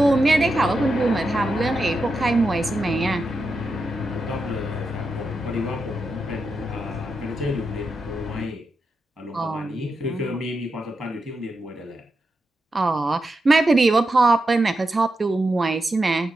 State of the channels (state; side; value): normal; both; correlation 0.87